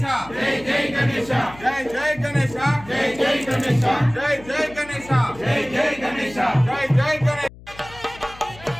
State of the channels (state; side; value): noise; left; hum, 20 dB below the sound